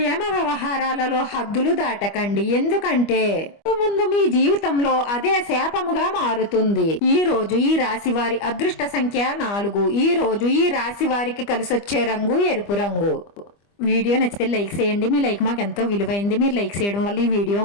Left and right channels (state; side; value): late; right; 25 ms